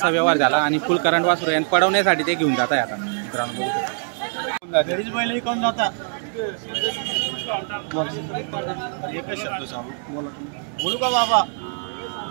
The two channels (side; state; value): left; silent; digital silence